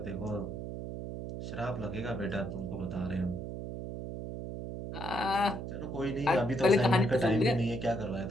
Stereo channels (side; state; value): right; noise; hum, 6 dB below the sound